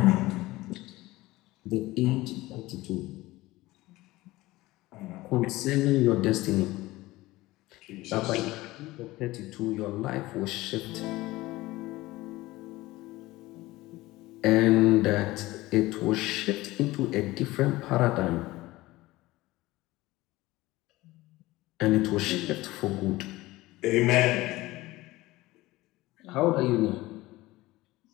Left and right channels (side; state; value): right; quieter; 18.9 dB